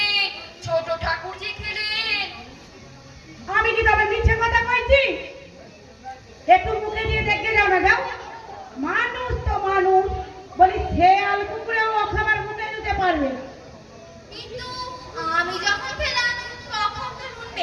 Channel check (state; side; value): identical; both; correlation 1.00